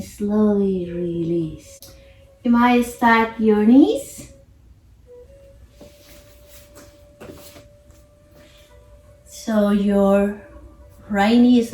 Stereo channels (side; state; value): both; identical; correlation 1.00